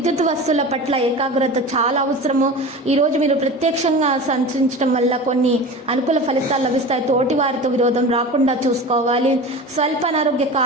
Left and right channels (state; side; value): normal; both; correlation 0.33